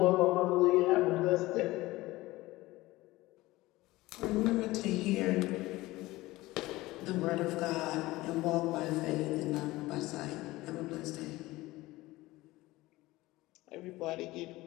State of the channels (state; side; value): quieter; right; 18.9 dB